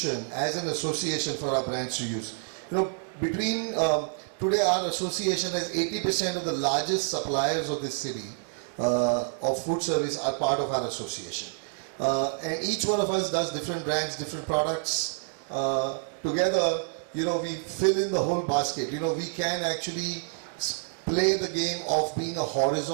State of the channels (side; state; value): left; silent; 59 dB below the other